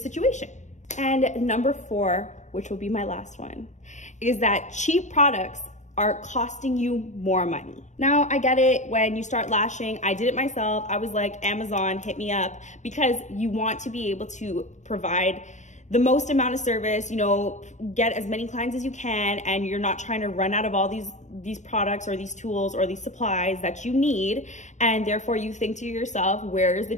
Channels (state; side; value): late; right; 0.34 ms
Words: And number 4, which will be my last one, is that cheap products are costing you more money. Now, I get it. When you start lashing, I did it myself. I was like, Amazon, hit me up, because you want to be able to provide the most amount of service, get as many clients as you can, and you're not trying to run out of all these products or these tools or these supplies that you need. And therefore you think to yourself, where is the